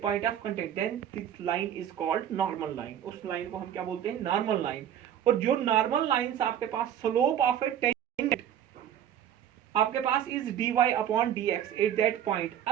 point of contact, then this line is called normal line. उस लाइन को हम क्या बोलते हैं, नॉर्मल लाइन। और जो नॉर्मल लाइंस आपके पास स्लोप ऑफ ए टेंजेंट आपके पास is dy upon dx at that point.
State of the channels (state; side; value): quieter; left; 10.1 dB